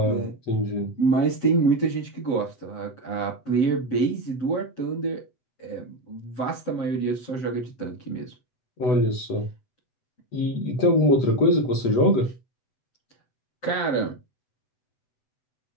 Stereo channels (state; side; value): late; right; 7.9 ms